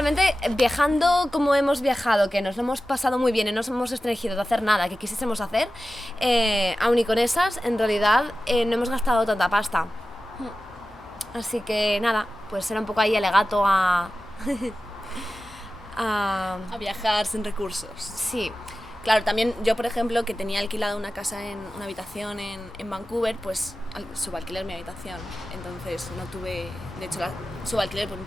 viajando como hemos viajado, que nos lo hemos pasado muy bien y no nos hemos restringido de hacer nada que quisiésemos hacer, aun y con esas, en realidad no hemos gastado tanta pasta. Así que nada, pues era un poco ahí alegato a viajar sin recursos. Sí. Claro, también yo, por ejemplo, que tenía alquilada una casa una habitación en Vancouver, pues subalquiler mi habitación. Entonces no tuve, de hecho, subalquiler por un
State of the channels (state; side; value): normal; both; correlation 0.94